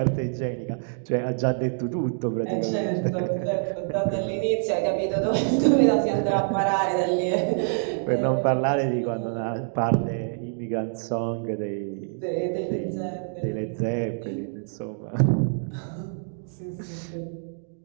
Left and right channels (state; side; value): silent; left; digital silence